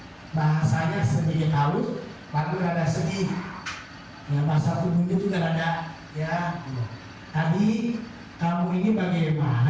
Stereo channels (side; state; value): both; identical; correlation 1.00